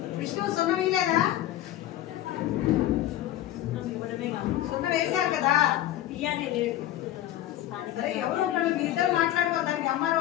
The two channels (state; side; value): quieter; right; 13.3 dB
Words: విష్ణు సున్నం వేయలేదా? సున్నం వేశారు కదా. సరే ఎవరు ఉంటాడు? మీ ఇద్దరు మాట్లాడుకోవాలి. దానికి ఎంఆర్ఓ